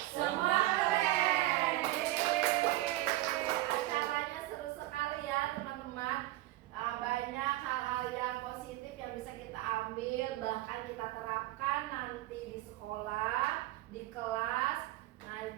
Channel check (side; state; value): left; quieter; 17.1 dB